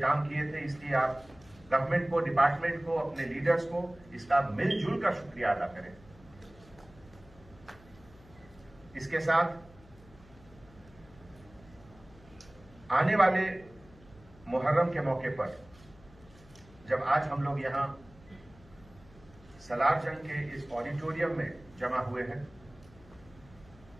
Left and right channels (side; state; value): left; noise; hum, 24 dB below the sound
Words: किए थे। इसलिए आप गवर्नमेंट को, डिपार्टमेंट को, अपने लीडर्स को इसका मिलजुल कर शुक्रिया अदा करें। इसके साथ आने वाले मुहर्रम के मौके पर जब आज हम लोग यहां सलार जंग के इस ऑडिटोरियम में जमा हुए हैं